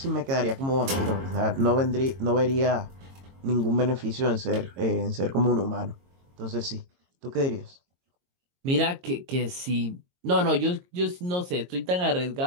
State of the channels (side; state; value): left; late; 22 ms